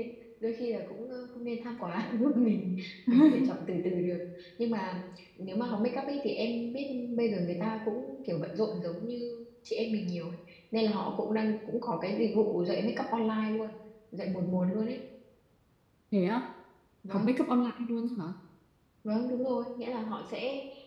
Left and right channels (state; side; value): identical; both; correlation 1.00